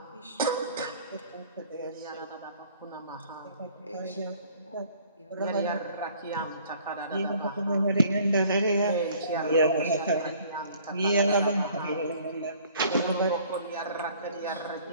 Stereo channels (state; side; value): inverted; both; correlation -0.55